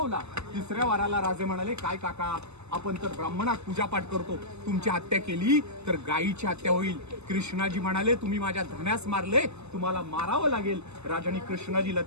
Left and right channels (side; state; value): left; late; 0.80 ms